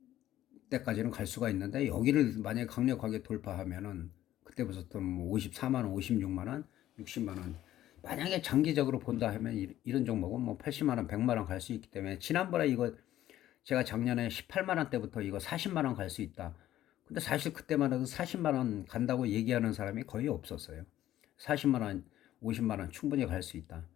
때까지는 갈 수가 있는데, 여기를 만약에 강력하게 돌파하면은 그때부터는 뭐 54만 원, 56만 원, 60만 원, 만약에 장기적으로 본다 하면 이런 종목은 뭐 80만 원, 100만 원 갈 수 있기 때문에, 지난번에 이거 제가 작년에 18만 원 때부터 이거 40만 원 갈 수 있다. 근데 사실 그때만 해도 40만 원 간다고 얘기하는 사람이 거의 없었어요. 40만 원, 50만 원 충분히 갈 수 있다.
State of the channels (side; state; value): right; quieter; 13.2 dB